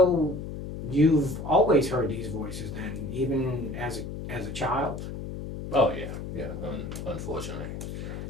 you've always heard these voices then, even as a child? Oh yeah, unfortunately.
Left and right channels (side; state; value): left; noise; hum, 7 dB below the sound